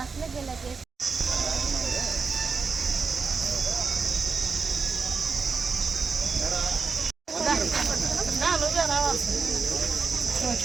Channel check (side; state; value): left; quieter; 5.0 dB